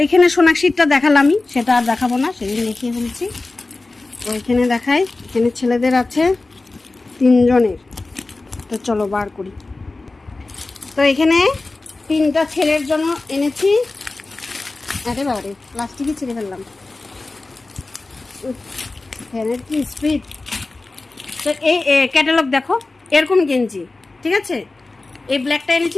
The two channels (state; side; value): quieter; right; 3.3 dB